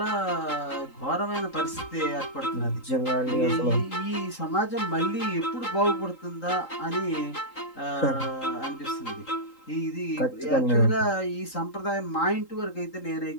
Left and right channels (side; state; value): right; late; 3.8 ms